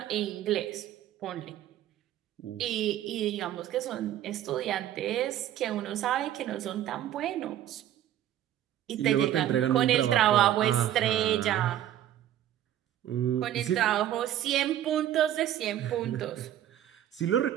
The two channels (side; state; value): left; quieter; 11.8 dB